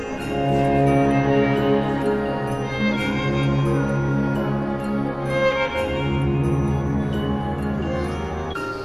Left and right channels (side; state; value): both; identical; correlation 1.00